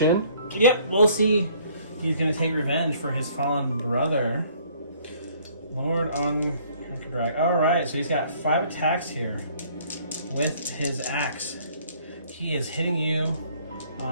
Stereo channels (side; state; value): both; inverted; correlation -0.59